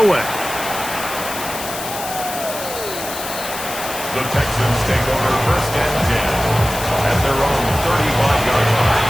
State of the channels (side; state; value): left; noise; hiss, 8 dB below the sound